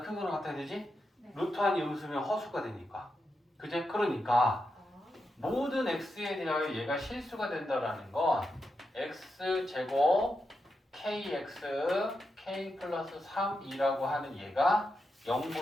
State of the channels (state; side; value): normal; both; correlation 0.86